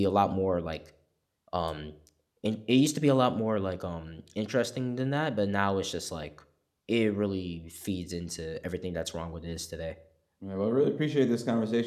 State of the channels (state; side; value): identical; both; correlation 1.00